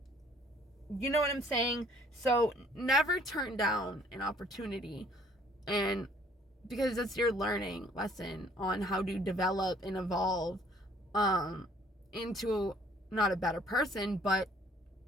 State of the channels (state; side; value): normal; both; correlation 0.59